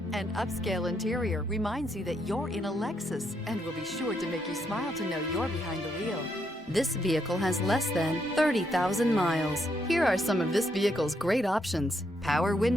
An upscale interior reminds you that you're in a Lexus and will be sure to make you smile to know you're behind the wheel. This vehicle has less than 30,000 miles. Here are some of this vehicle's great options: power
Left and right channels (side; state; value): both; normal; correlation 0.77